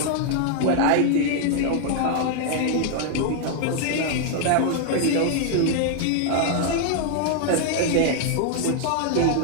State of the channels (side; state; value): both; different; correlation 0.00